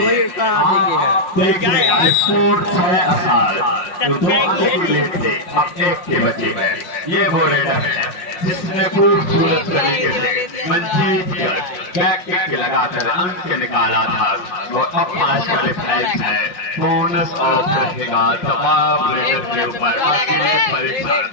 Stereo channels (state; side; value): late; right; 5.5 ms